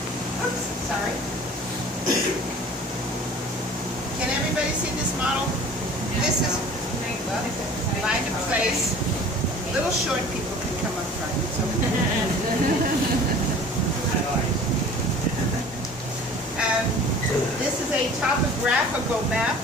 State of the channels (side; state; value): both; normal; correlation 0.45